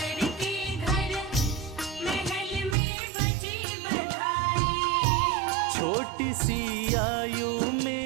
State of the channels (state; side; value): drops out; left; at 2.8 s